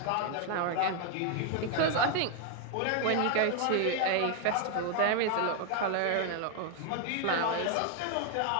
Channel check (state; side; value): different; both; correlation 0.00